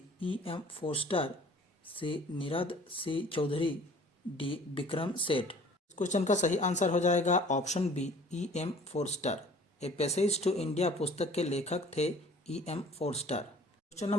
E.M. Forster, C Nirad C Chaudhuri, D Vikram Seth. इस क्वेश्चन का सही आंसर हो जाएगा option B E.M. Forster. A passage to India पुस्तक के लेखक थे E.M. Forster. Question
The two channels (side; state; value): both; normal; correlation 0.50